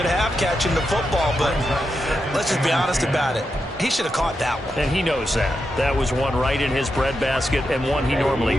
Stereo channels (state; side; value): normal; both; correlation 0.86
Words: half catching the football, but let's just be honest about it. He should have caught that one. And he knows that. That was one right in his breadbasket and one he normally